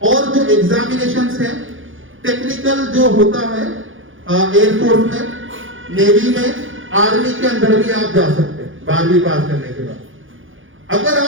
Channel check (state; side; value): late; left; 0.58 ms